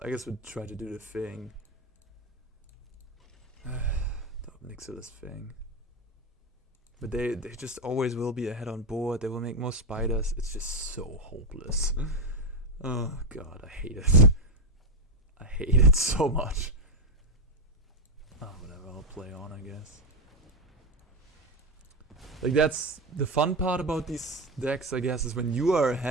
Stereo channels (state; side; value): normal; both; correlation 0.09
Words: try to do the thing. The Ob Nixilis thing. But they just always will be ahead on board. They will make more spiders. It's just so hopeless. Oh god, I hate it. I hate it so much. Oh, whatever, I'll play on, I guess. Like, that's the fun part about these decks, I guess, is when you are